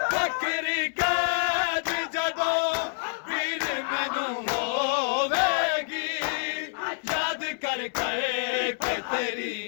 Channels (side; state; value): right; silent; 60 dB below the other